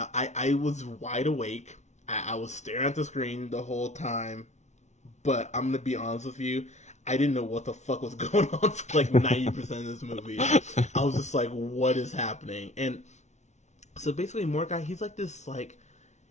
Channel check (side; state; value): right; late; 0.33 ms